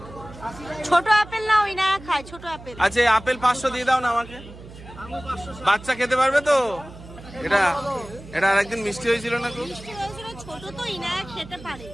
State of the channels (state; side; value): noise; right; hum, 17 dB below the sound